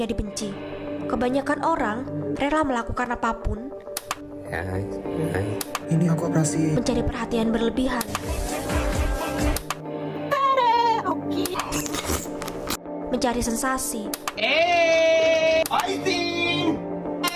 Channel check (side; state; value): both; identical; correlation 1.00